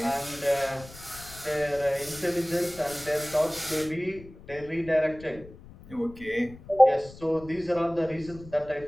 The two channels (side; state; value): left; noise; rumble, 19 dB below the sound